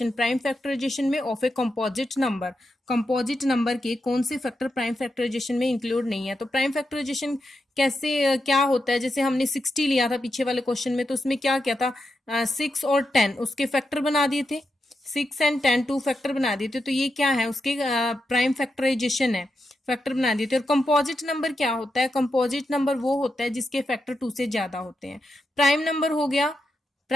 में ऑफ ए कंपोजिट नंबर के कौन से फैक्टर प्राइम फैक्टराइजेशन में इंक्लूड नहीं है। तो प्राइम फैक्टराइजेशन कैसे क्या होता है, जैसे हमने 60 लिया था पीछे वाले क्वेश्चन में, तो उसमें क्या क्या था, 6 और 10 उसके फैक्टर बना दिए थे, 6 एंड 10 टू फैक्टर बना दिए थे, तो ये क्या है, उसके प्राइम फैक्टराइजेशन है, फैक्टर बना दिए थे। और कंपोजिट नंबर क्या होता है, कंपोजिट नंबर वो होता है जिसके फैक्टर 2 से ज्यादा होते हैं। प्राइम नंबर हो गया,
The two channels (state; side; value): normal; both; correlation 0.86